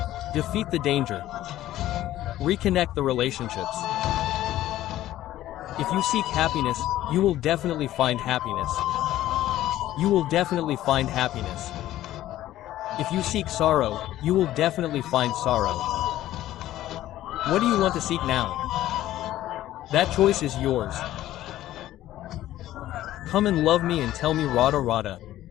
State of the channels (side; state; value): right; quieter; 14.1 dB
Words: Defeat the danger. Reconnect the relationships. If you seek happiness, you will definitely find happiness. You will definitely find happiness. If you seek sorrow, you will definitely find sorrow. What do you want to seek now? That choice is yours. Come and love me and tell me Radha Radha.